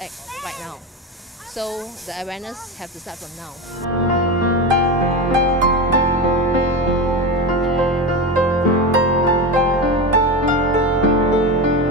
act right now. So the awareness have to start from now.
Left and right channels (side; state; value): both; normal; correlation 0.20